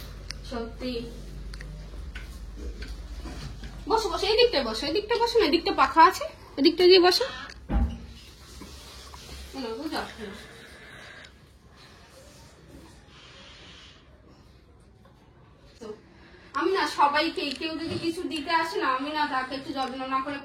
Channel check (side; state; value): both; identical; correlation 1.00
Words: সত্যি, বসো বসো, এই দিকটায় বসো, এই দিকটা বসো না, এদিকটা পাখা আছে, এদিকটা দিয়ে বসো। আমি না সবাইকে, কেউ যদি কিছু দিতে আসে না, আমি না তাকে একটু যত্ন না করে